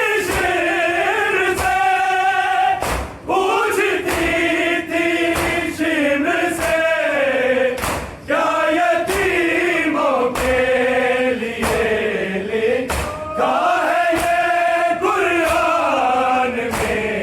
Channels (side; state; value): both; identical; correlation 1.00